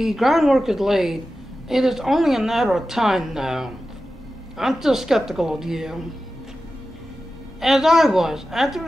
groundwork is laid. It is only a matter of time now. I'm still skeptical of you. As I was, after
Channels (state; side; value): normal; both; correlation 0.93